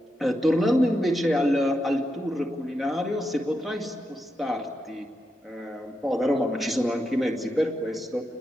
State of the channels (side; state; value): both; normal; correlation 0.85